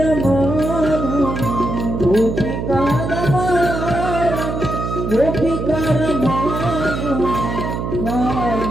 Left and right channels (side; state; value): right; noise; hum, 3 dB below the sound